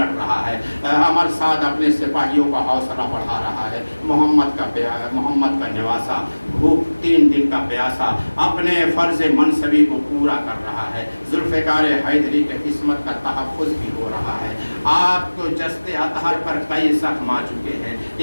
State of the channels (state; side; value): inverted; both; correlation -1.00